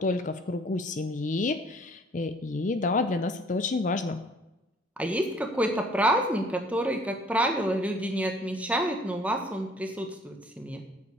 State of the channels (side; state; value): both; normal; correlation 0.56